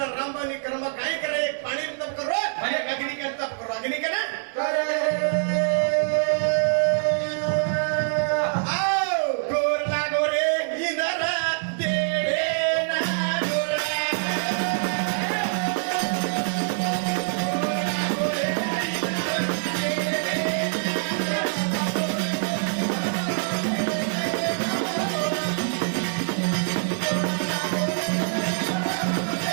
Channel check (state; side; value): silent; left; digital silence